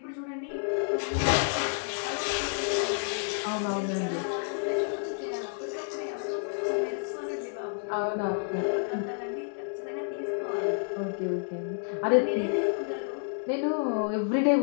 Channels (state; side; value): silent; right; 57 dB below the other